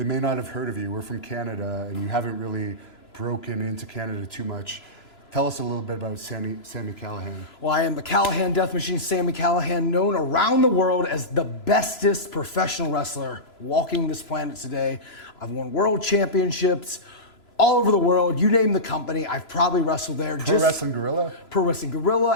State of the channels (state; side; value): late; right; 3.0 ms